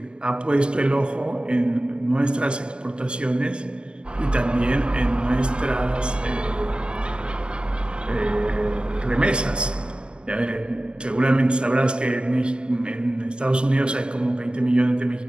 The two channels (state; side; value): late; left; 0.052 ms